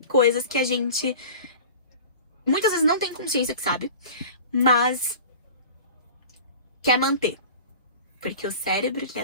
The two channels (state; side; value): inverted; both; correlation -0.39